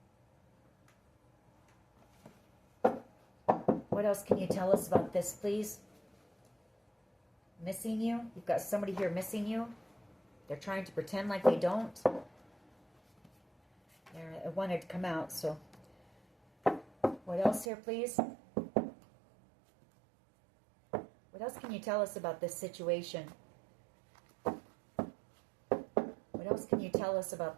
What else can you tell us about this, please? Missing you? You've got somebody here missing you. They're trying to pretend like they don't. It wanted to come out, so. What else here, please? What else can you tell us about this situation? What else can you tell us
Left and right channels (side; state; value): left; drops out; at 17.7 s